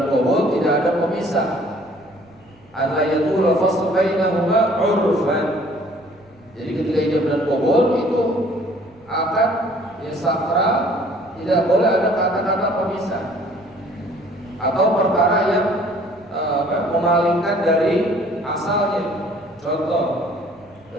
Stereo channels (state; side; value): noise; right; rumble, 29 dB below the sound